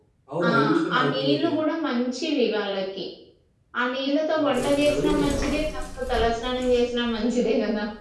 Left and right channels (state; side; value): identical; both; correlation 1.00